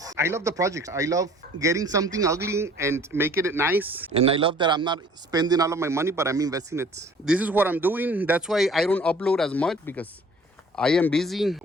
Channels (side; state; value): both; normal; correlation 0.52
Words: I love the projects. I love getting something ugly and making it nice. And I love that I'm not spending all of my money, but I'm investing it. This is what I'm doing. That's why I don't upload as much, because I am busy